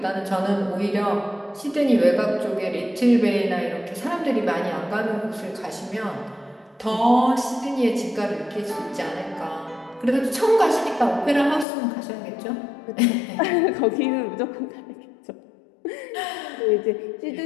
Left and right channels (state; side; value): drops out; right; at 11.7 s